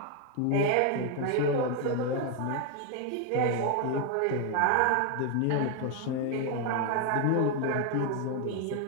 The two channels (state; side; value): different; both; correlation 0.01